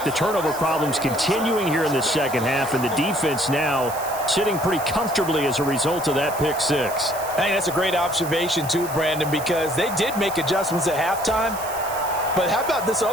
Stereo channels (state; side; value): noise; right; hiss, 12 dB below the sound